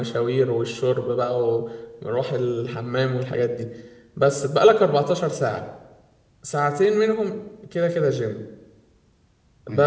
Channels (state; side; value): identical; both; correlation 1.00